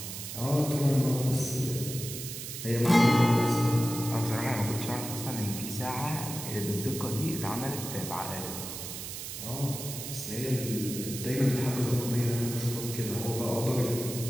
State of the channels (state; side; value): noise; right; hiss, 8 dB below the sound